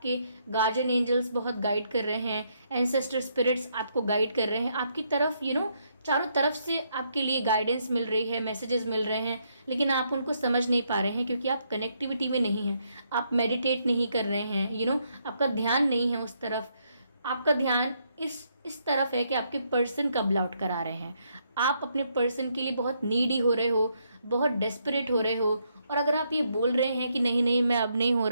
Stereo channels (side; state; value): both; inverted; correlation -0.75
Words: गार्जियन एंजल्स बहुत गाइड कर रहे हैं, एंसेस्टर स्पिरिट्स आपको गाइड कर रहे हैं, आपकी तरफ चारों तरफ से आपके लिए गाइडेंस मिल रही है, मैसेजेस मिल रहे हैं, लेकिन आप उनको समझ नहीं पा रहे हैं क्योंकि आप कनेक्टिविटी में नहीं हैं, आप मेडिटेट नहीं कर रहे हैं, आपका ध्यान नहीं है उस तरफ, आपका ध्यान इस तरफ है कि आपके पर्सन कब लौट कर आ रहे हैं। आप अपने पर्सन के लिए बहुत नीडी हो रहे हो, बहुत डेस्परेट हो रहे हो, और अगर आप ये बोल रहे हैं कि नहीं नहीं मैं अब नहीं हो